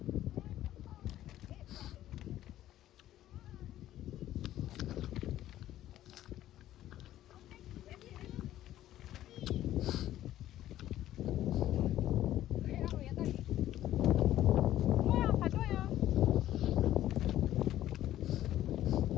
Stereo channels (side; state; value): right; quieter; 13.2 dB